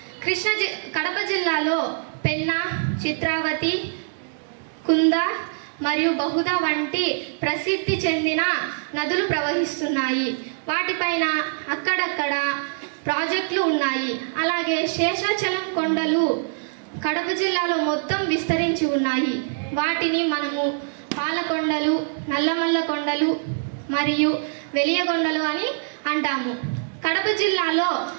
కడప జిల్లాలో పెన్నా, చిత్రావతి, కుంద మరియు బహుదా వంటి ప్రసిద్ధి చెందిన నదులు ప్రవహిస్తున్నాయి. వాటిపైన అక్కడక్కడ ప్రాజెక్టులు ఉన్నాయి. అలాగే శేషాచలం కొండలు కడప జిల్లాలో మొత్తం విస్తరించి ఉన్నాయి. వాటిని మనము పాలకొండలు, నల్లమల్ల కొండలు మరియు వెలియగొండలు అని అంటాము. కడప జిల్లాలో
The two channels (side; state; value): left; silent; digital silence